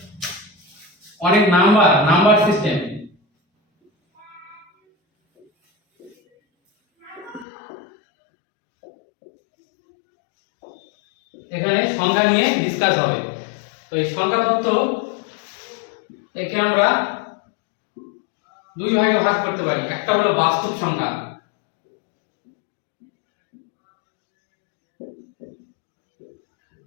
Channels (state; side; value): drops out; right; at 7.5 s